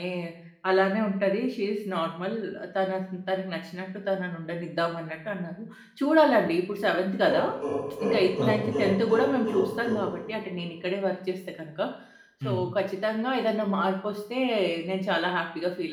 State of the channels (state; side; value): identical; both; correlation 1.00